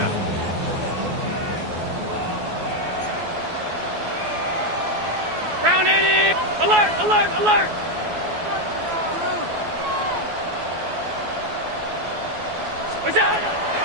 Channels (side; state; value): left; late; 12 ms